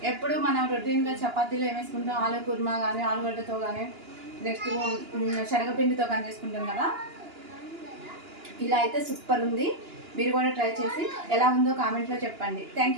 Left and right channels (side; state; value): left; late; 2.9 ms